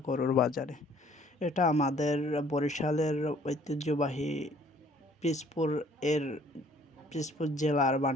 গরুর বাজারে। এটা আমাদের বরিশালের ঐতিহ্যবাহী পিসপুর এর পিসপুর জেলার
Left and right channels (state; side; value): normal; both; correlation 0.58